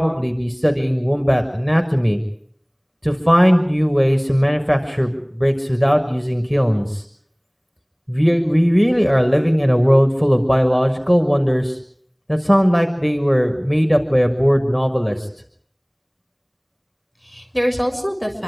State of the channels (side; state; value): both; identical; correlation 1.00